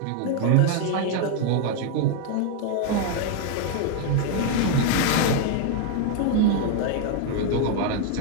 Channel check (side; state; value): both; different; correlation 0.00